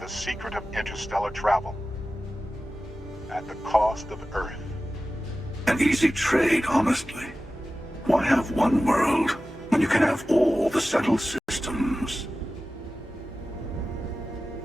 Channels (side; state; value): both; normal; correlation 0.95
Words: the secret of interstellar travel at the cost of Earth. An easy trade, honestly. Why have one world when you can have all the settled systems?